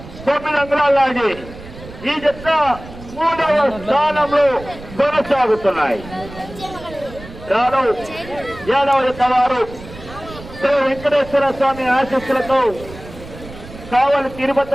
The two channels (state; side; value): noise; right; rumble, 16 dB below the sound